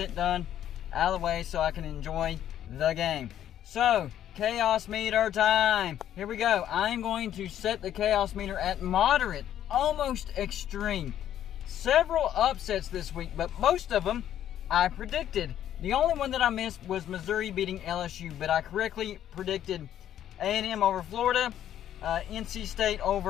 done out of the way so I can enjoy the game. So, chaos meter time. Here we go. I'm going to set the chaos meter at moderate, almost extreme. Several upsets this week, but most of them I predicted. The only one that I missed was Missouri beating LSU, but I correctly predicted A&M over Florida, NC State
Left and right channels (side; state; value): right; quieter; 11.0 dB